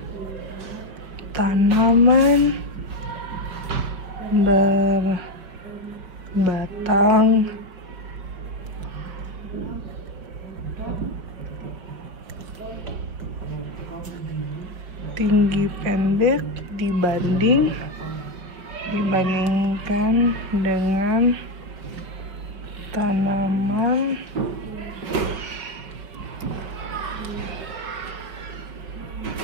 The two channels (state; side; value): late; left; 5.0 ms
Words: tanaman berbatang tinggi pendek dibandingkan dengan tanaman